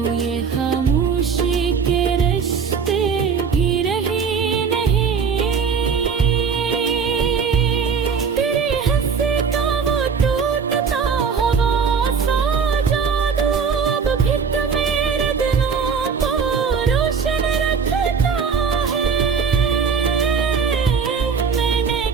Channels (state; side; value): quieter; left; 6.0 dB